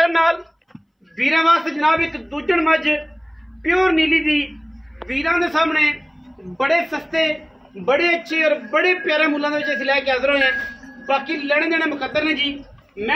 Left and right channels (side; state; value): both; identical; correlation 1.00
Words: नाल वीरां वास्ते जनाब एक दूजण मज प्योर नीली दी वीरां दे सामने बड़े सस्ते बड़े अच्छे और बड़े प्यारे मुल्लां दे विच असीं लैके हाज़र होए हैं। बाकी लेने देने मुकद्दर ने जी। मैं